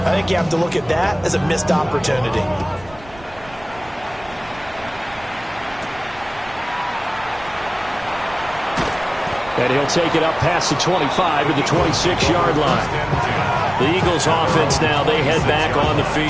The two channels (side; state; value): right; noise; rumble, 22 dB below the sound